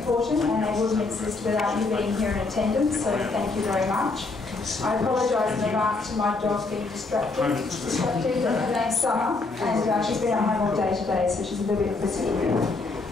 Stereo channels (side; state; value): right; quieter; 3.6 dB